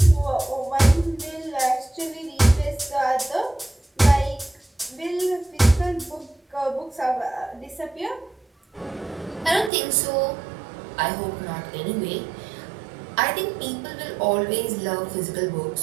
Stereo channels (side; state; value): left; drops out; at 9.7 s